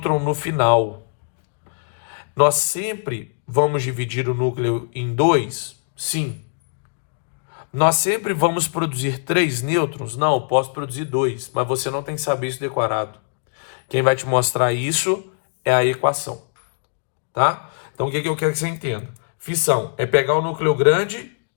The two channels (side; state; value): right; silent; digital silence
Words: no final. Nós sempre vamos dividir o núcleo em dois? Sim. Nós sempre vamos produzir três nêutrons? Não, eu posso produzir dois, mas você não tem que saber isso decorado. Quem vai te mostrar isso é a equação, tá? Então, o que eu quero que você entenda? Fissão é pegar o núcleo grande